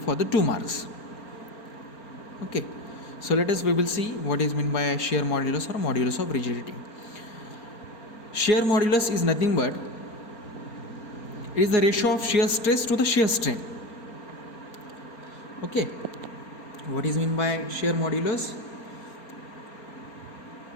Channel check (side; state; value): right; late; 4.3 ms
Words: the 2 marks. Okay, so we will see what is meant by shear modulus or modulus of rigidity. Shear modulus is nothing but it is the ratio of shear stress to the shear strain. Okay, what is meant by shear modulus?